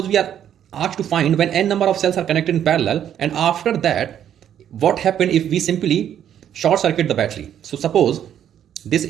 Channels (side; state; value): left; quieter; 9.9 dB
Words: we are asked to find when n number of cells are connected in parallel, and after that what happened if we simply short circuit the battery. So suppose this